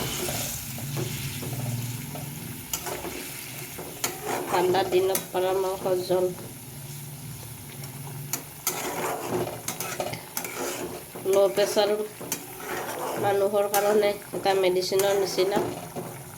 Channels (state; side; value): identical; both; correlation 1.00